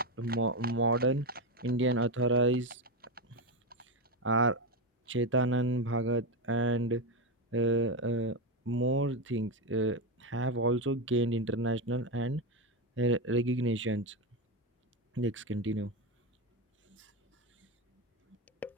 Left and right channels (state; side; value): normal; both; correlation 0.11